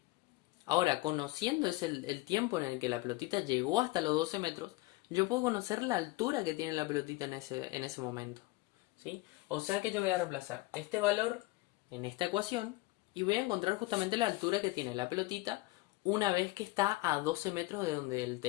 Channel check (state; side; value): quieter; right; 20.8 dB